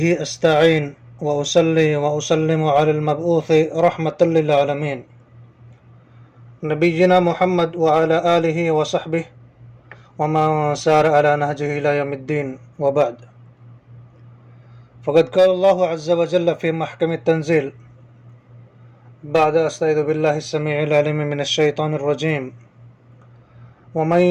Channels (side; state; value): both; identical; correlation 1.00